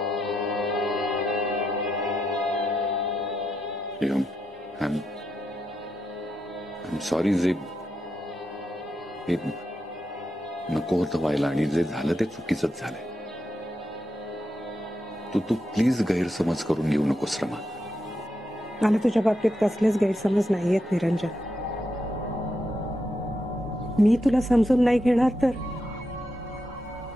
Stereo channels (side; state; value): both; normal; correlation 0.84